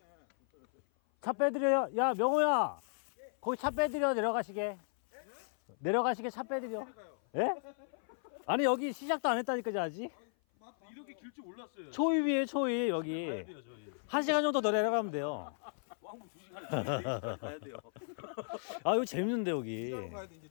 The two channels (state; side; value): silent; right; 54 dB below the other